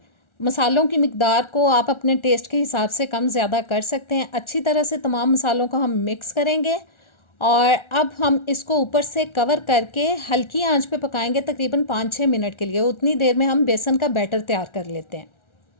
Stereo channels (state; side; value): late; right; 1.4 ms